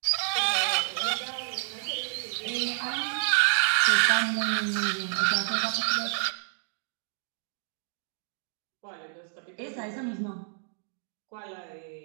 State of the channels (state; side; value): silent; left; digital silence